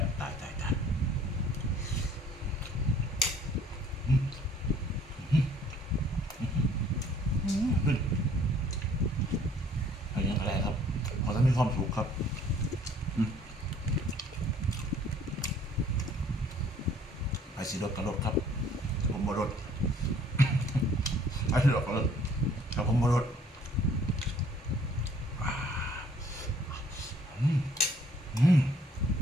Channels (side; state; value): both; normal; correlation 0.58